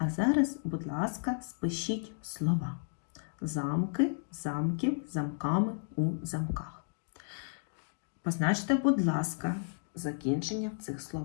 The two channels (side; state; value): right; silent; digital silence